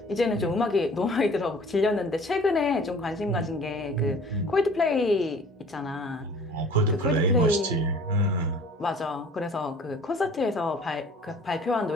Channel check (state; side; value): normal; both; correlation 0.48